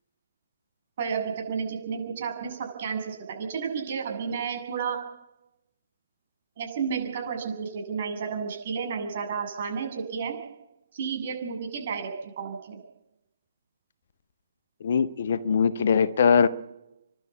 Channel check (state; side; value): inverted; both; correlation -0.70